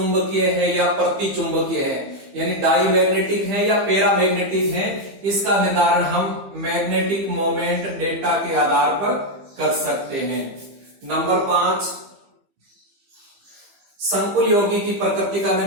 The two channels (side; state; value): left; late; 15 ms